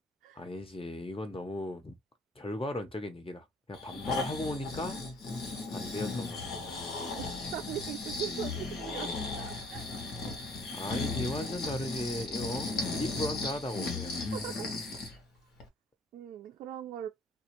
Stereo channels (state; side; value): normal; both; correlation 0.57